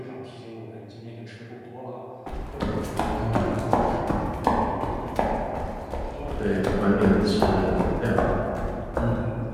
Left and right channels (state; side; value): identical; both; correlation 1.00